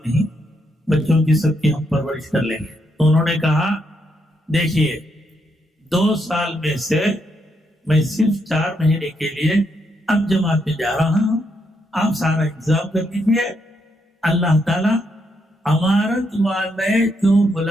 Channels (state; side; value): normal; both; correlation 0.78